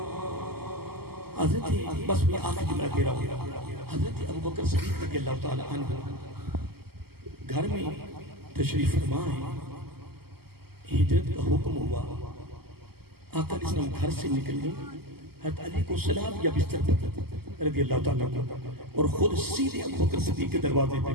حضرت بس میں آخر جملہ دے رہا ہوں، حضرت ابوبکر صدیق رضی اللہ تعالی عنہ گھر میں تشریف فرما ہے، ہجرت کا حکم ہوا، آقا علیہ السلام گھر سے نکلنے، حضرت علی کو سلا دیا بستر پر رضی اللہ تعالیٰ عنہ، اور خود سیدھے ابوبکر صدیق کے دروازے پہ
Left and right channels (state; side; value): late; left; 0.96 ms